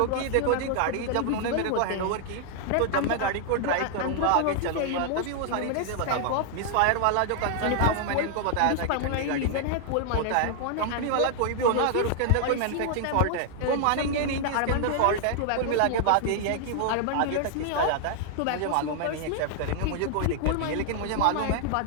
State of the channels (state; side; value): different; both; correlation 0.00